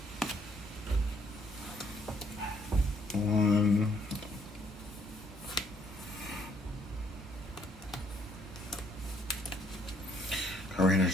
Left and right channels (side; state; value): both; normal; correlation 0.66